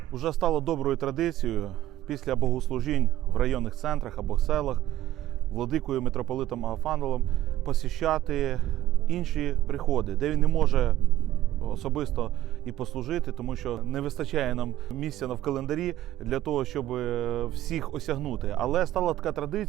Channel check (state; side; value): quieter; left; 13.6 dB